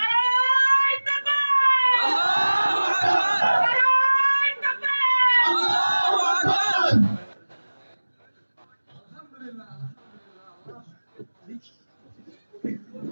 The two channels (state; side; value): inverted; both; correlation -1.00